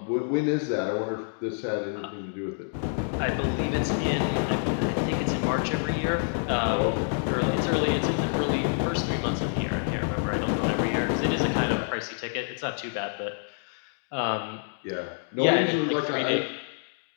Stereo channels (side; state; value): right; silent; digital silence